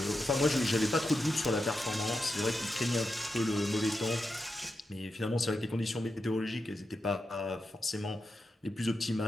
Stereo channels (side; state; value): both; normal; correlation 0.88